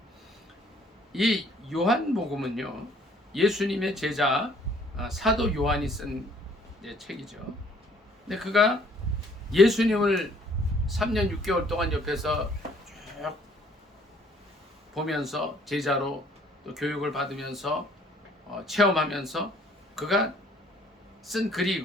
이 요한복음은요, 예수님의 제자 사도 요한이 쓴 책이죠. 근데 그가 예수님을 3년 6개월 동안 옆에서 쭉 보면서 제자로 또 교육을 받으면서 체험하면서 그가 쓴 글이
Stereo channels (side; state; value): both; normal; correlation 0.60